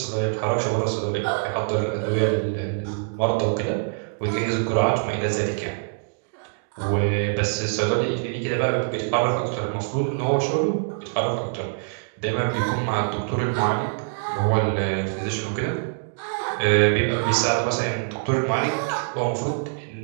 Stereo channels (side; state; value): left; silent; digital silence